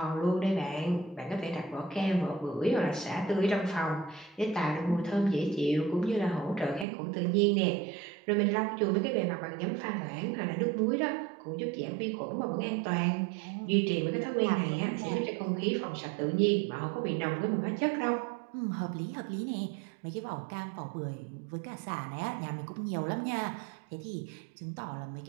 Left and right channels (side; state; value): left; drops out; at 6.9 s